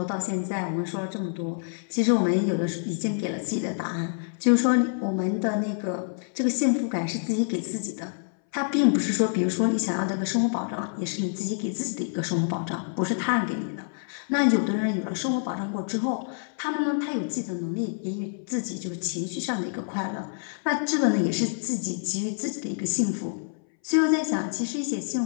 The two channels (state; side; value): silent; right; 60 dB below the other